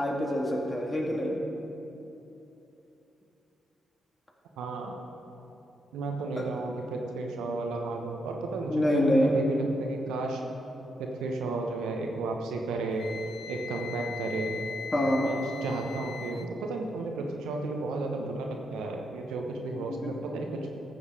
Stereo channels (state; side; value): normal; both; correlation 0.80